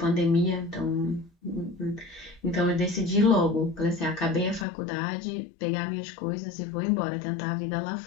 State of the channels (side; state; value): right; drops out; at 4.7 s